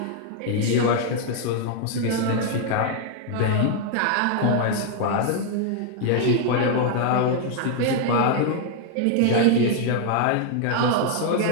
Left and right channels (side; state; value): both; different; correlation 0.00